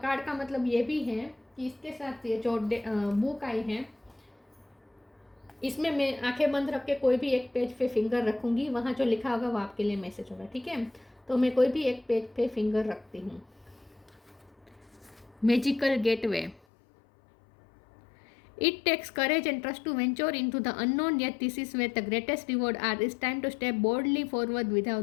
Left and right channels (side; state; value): right; drops out; at 16.6 s